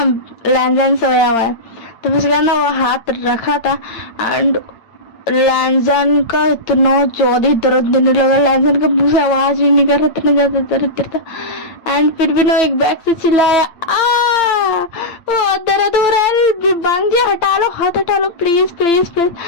लैंजन सोया हुआ है। तो उसके बाद ना वो हाथ रखा था, एंड लैंजन का इतना ज्यादा दर्द देने लगा, लैंजन का मुंह से आवाज भी नहीं कर रहा, इतना ज्यादा दर्द था। एंड फिर भी ना एक बैग से चिल्लाया, वो दर्द हो रहा है, बांगजी हटा लो, हाथ हटा लो, प्लीज प्लीज प्लीज।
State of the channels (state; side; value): late; right; 8.8 ms